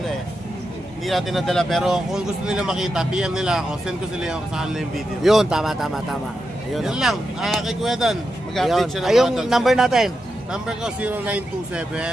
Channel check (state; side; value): normal; both; correlation 0.87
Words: hindi natin nadala. Pero kung gusto nila makita, PM nila ako, send ko sila yung sa kanila yung video. Yun, tama. Ayun, Yun lang, kay Kuya Don, mag-update siya ng Ayong mga dogs. number natin. Number ko